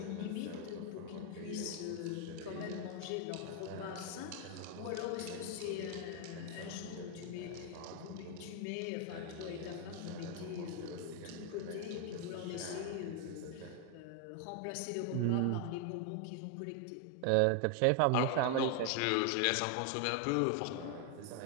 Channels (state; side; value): different; both; correlation 0.00